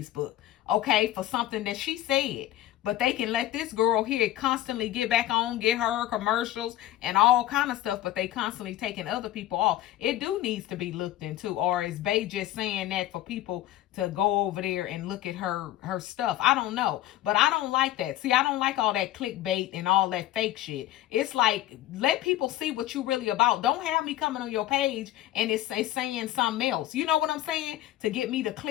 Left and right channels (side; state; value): right; quieter; 14.0 dB